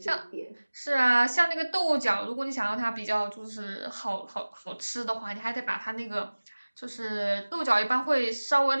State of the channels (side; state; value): both; inverted; correlation -1.00